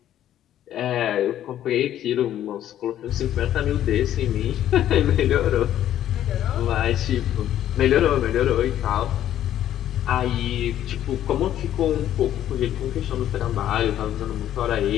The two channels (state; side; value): quieter; right; 11.6 dB